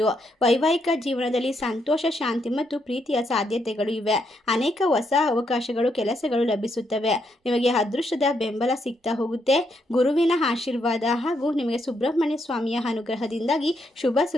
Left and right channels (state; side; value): normal; both; correlation 0.77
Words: ವೈವಾಹಿಕ ಜೀವನದಲ್ಲಿ ಸಂತೋಷ, ಶಾಂತಿ ಮತ್ತು ಪ್ರೀತಿಯ ಸಾಧ್ಯತೆಗಳು ಇವೆ. ಅನೇಕ ಹೊಸ ಅವಕಾಶಗಳು, ಕೆಲಸಗಳು ಲಭಿಸುತ್ತವೆ. ನಿಮಗೆ ಅದೃಷ್ಟದ ಬೆಂಬಲ ಸಿಗ್ತಾ ಹೋಗುತ್ತೆ. ಗುರುವಿನ ಆಶೀರ್ವಾದ ಹಾಗೂ ನಿಮಗೆ ಸುಬ್ರಹ್ಮಣ್ಯ ಸ್ವಾಮಿಯ ಅನುಗ್ರಹದಿಂದಾಗಿ ಶುಭ